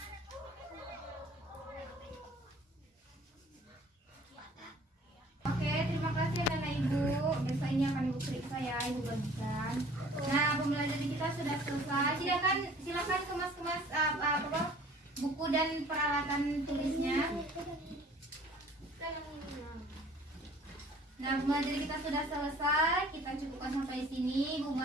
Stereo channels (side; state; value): both; normal; correlation 0.51